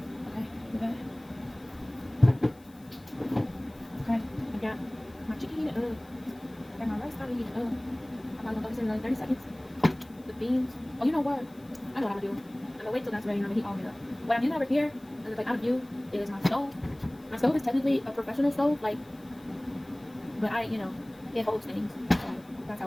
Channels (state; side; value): noise; left; hiss, 28 dB below the sound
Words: okay. Okay, I got my chicken heated up. I got my rice kind of heated up. I'm probably going to throw this in another 30 seconds. The beans. Oh, you know what? I know what I'm going to do. I'm going to wait till that's ready and I'm going to heat all of it up. What I'm using over here, and it's like out of view, is my stove. My stove is technically a professional stove, like, but it holds things. So that's